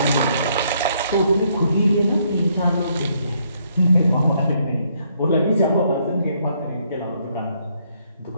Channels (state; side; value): inverted; both; correlation -0.71